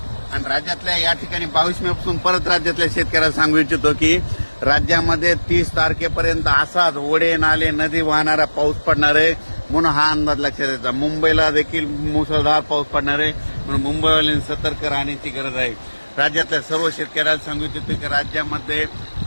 आणि राज्यातल्या या ठिकाणी 22 मे पासून परत राज्यातल्या शेतकऱ्याला सांगू इच्छितो की राज्यामध्ये 30 तारखेपर्यंत असाच ओढे नाले नदी वाहणारा पाऊस पडणार आहे, म्हणून हा अंदाज लक्षात येतो. मुंबईला देखील मुसळधार पाऊस पडणार आहे, म्हणून मुंबईवाल्यांनी सतर्क राहण्याची गरज आहे. राज्यातल्या सर्व शेतकऱ्याला सांगू इच्छितो की राज्यामध्ये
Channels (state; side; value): inverted; both; correlation -1.00